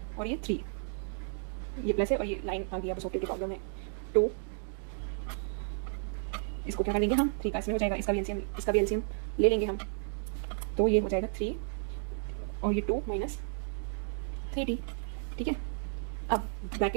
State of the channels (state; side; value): silent; left; digital silence